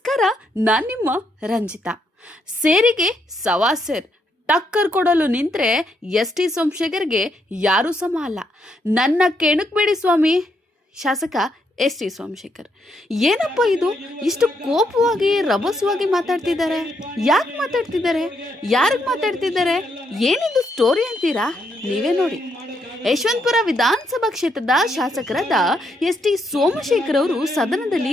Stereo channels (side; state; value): both; normal; correlation 0.77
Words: ನಾನು ನಿಮ್ಮ ರಂಜಿತಾ. ಸೇರಿಗೆ ಸವಾಸೇರ್ ಟಕ್ಕರ್ ಕೊಡಲು ನಿಂತ್ರೆ ಎಸ್.ಟಿ. ಸೋಮಶೇಖರ್ಗೆ ಯಾರೂ ಸಮ ಅಲ್ಲ. ನನ್ನ ಕೆಣಕಬೇಡಿ ಸ್ವಾಮಿ. ಶಾಸಕ ಎಸ್.ಟಿ. ಸೋಮಶೇಖರ್ ಏನಪ್ಪ ಇದು, ಇಷ್ಟು ಕೋಪವಾಗಿ ರಭಸವಾಗಿ ಮಾತಾಡ್ತಿದ್ದಾರೆ? ಯಾಕೆ ಮಾತಾಡ್ತಿದ್ದಾರೆ? ಯಾರಿಗೆ ಮಾತಾಡ್ತಿದ್ದಾರೆ? ಏನಿದು ಸ್ಟೋರಿ ಅಂತೀರಾ? ನೀವೇ ನೋಡಿ. ಯಶವಂತಪುರ ವಿಧಾನಸಭಾ ಕ್ಷೇತ್ರದ ಶಾಸಕರಾದ ಎಸ್.ಟಿ. ಸೋಮಶೇಖರ್ ಅವರು ಸದನದಲ್ಲಿ